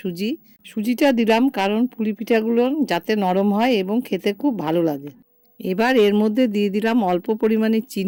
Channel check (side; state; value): both; identical; correlation 1.00